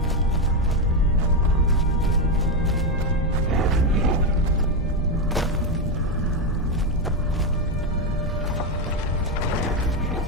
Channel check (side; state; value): both; normal; correlation 0.07